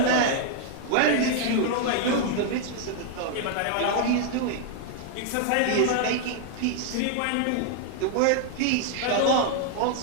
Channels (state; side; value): different; both; correlation 0.00